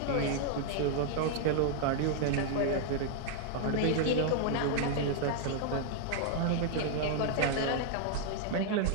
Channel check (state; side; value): different; both; correlation -0.01